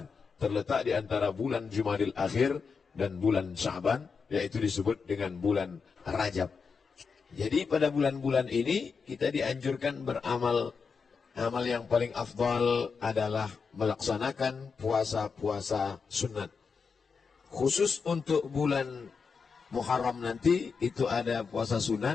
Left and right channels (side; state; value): right; quieter; 5.4 dB